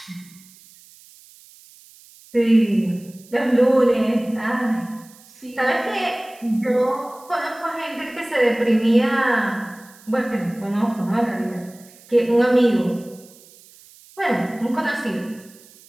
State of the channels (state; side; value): noise; right; hiss, 24 dB below the sound